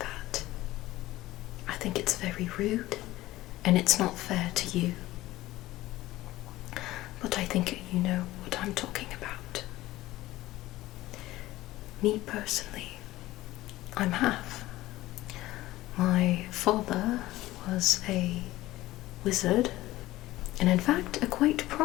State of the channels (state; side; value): quieter; right; 16.9 dB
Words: I think it's very rude, and it's not fair to you. But I think you know what I'm talking about. Me personally, I'm half. My father was a wizard, and in fact a quite